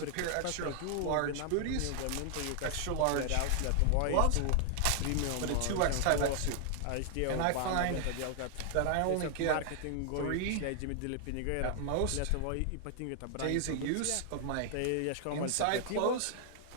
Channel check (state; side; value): different; both; correlation 0.00